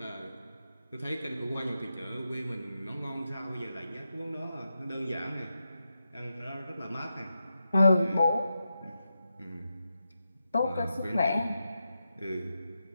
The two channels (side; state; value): both; inverted; correlation -0.89